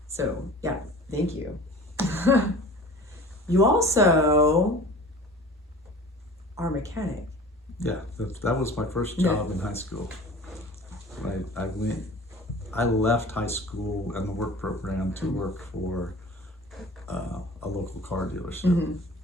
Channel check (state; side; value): normal; both; correlation 0.41